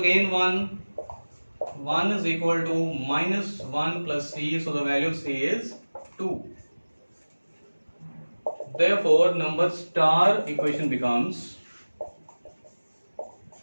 1. 1 is equal to minus 1 plus c, so the value of c is 2. Therefore, number star equation becomes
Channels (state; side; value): inverted; both; correlation -1.00